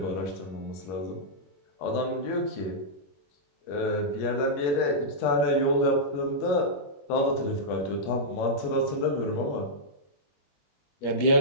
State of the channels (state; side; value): late; right; 21 ms